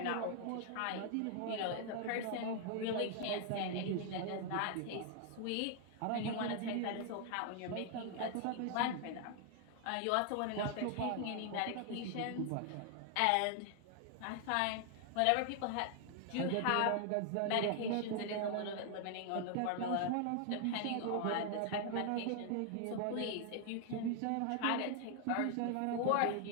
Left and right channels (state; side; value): different; both; correlation 0.00